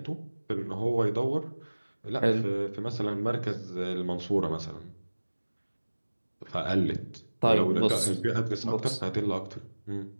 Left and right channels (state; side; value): inverted; both; correlation -1.00